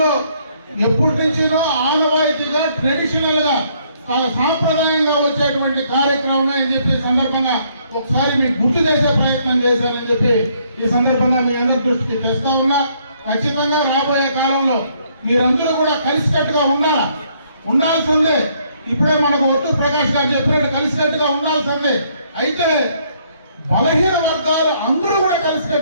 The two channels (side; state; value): both; inverted; correlation -0.68